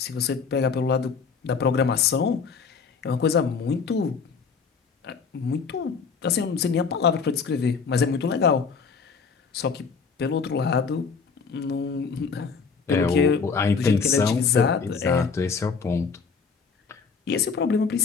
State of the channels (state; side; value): quieter; right; 5.4 dB